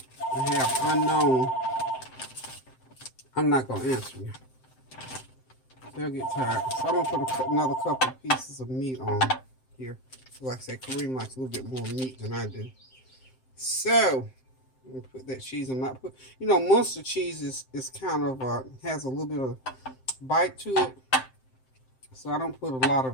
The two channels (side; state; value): right; late; 7.7 ms